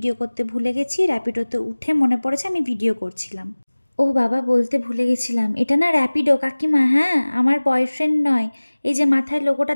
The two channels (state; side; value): inverted; both; correlation -1.00